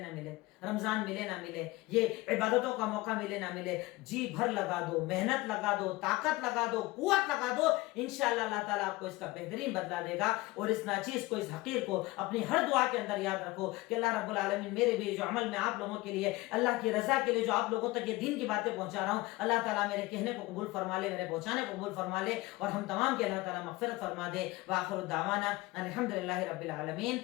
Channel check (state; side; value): quieter; right; 20.6 dB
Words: ملے، رمضان ملے نہ ملے، یہ عبادتوں کا موقع ملے نہ ملے، جی بھر لگا دو، محنت لگا دو، طاقت لگا دو، قوت لگا دو، انشاءاللہ اللہ تعالیٰ آپ کو اس کا بہترین بدلہ دے گا۔ اور اس ناچیز کو، اس حقیر کو اپنی ہر دعا کے اندر یاد رکھو کہ اللہ رب العالمین میرے بھی جو عمل میں آپ لوگوں کے لیے، اللہ کی رضا کے لیے جو آپ لوگوں تک یہ دین کی باتیں پہنچا رہا ہوں، اللہ تعالیٰ میرے کہنے کو قبول فرما لے، میرے پہنچانے کو قبول فرما لے، اور ہم تمام کے اللہ تعالیٰ مغفرت فرما دے۔ وآخر دعوانا الحمدللہ رب العالمین۔